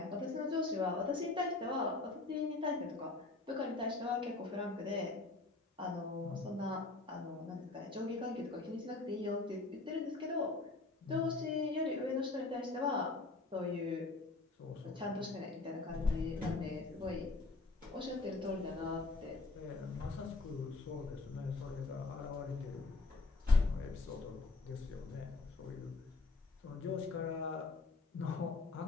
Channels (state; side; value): quieter; right; 3.5 dB